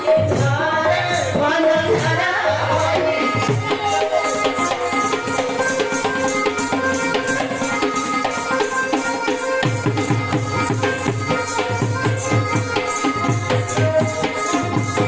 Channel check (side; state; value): both; identical; correlation 1.00